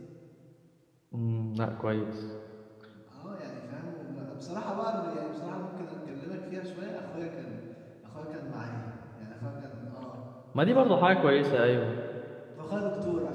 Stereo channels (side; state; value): both; identical; correlation 1.00